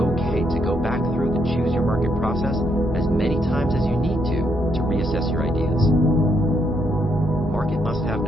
to go back through the Choose Your Market process as many times as you need to reassess your ideas. Market must-have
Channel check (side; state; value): both; normal; correlation 0.75